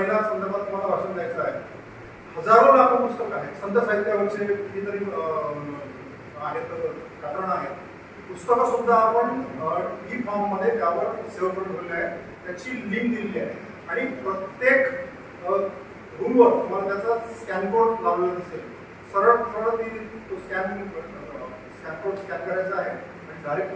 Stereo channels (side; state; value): both; identical; correlation 1.00